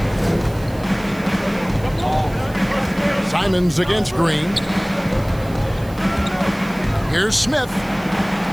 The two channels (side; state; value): right; noise; hiss, 22 dB below the sound